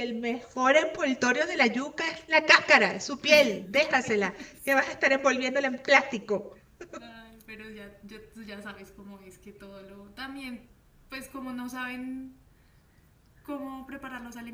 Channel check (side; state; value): both; identical; correlation 1.00